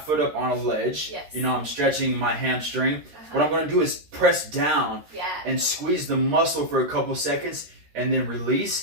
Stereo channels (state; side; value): late; left; 13 ms